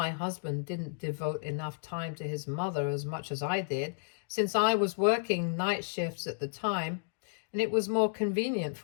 husband didn't devote enough time to his mother as much as I did, since I was working night shifts at the time, and it was more convenient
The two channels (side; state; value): right; silent; digital silence